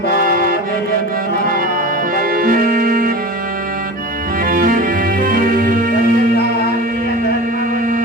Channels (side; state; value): both; normal; correlation 0.33